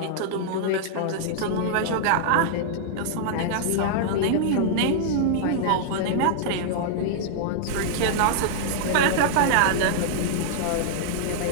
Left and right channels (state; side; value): different; both; correlation -0.01